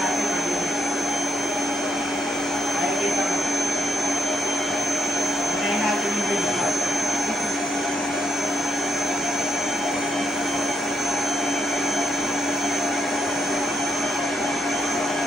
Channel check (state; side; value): normal; both; correlation 0.77